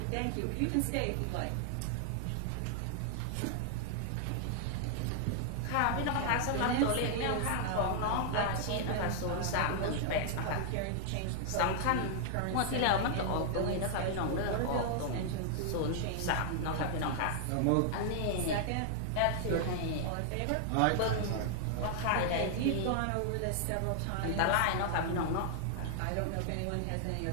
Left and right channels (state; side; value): different; both; correlation 0.00